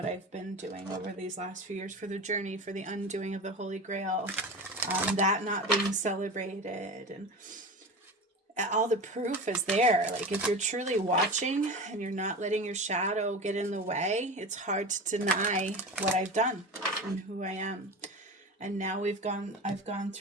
I've been doing over these last few years, for the journey, for the undoing of the Holy Grail, that not being celebrated, and all the proof is there. Like, if you're truly watching and you're not letting your shadow get in the way, it's hard to deny what I've done and who I am. And now I've gone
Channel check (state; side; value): normal; both; correlation 0.29